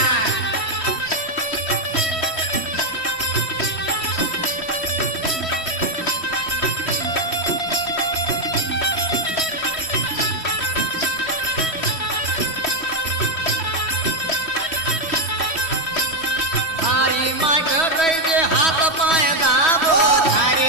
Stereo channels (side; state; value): right; late; 3.1 ms